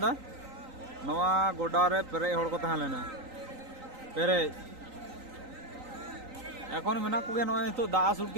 दा नवा गोडा रे पेरे हड़ को तहां लेना पेरे এখন মেনা কোগে নয় তো দা আসুট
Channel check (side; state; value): left; late; 3.9 ms